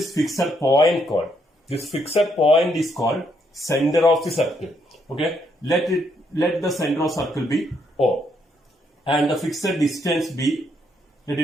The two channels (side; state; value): both; normal; correlation 0.74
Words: fixed point called? This fixed point is called center of the circle. Okay, let the center of circle be O, and the fixed distance be,